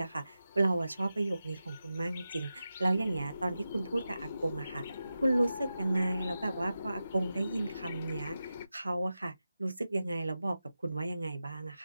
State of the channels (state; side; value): inverted; both; correlation -0.92